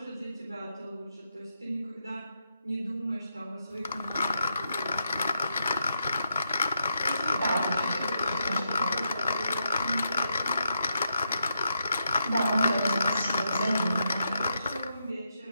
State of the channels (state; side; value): inverted; both; correlation -0.81